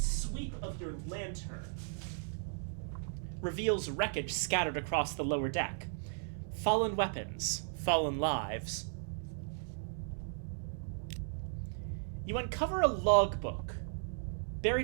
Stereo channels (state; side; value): silent; left; digital silence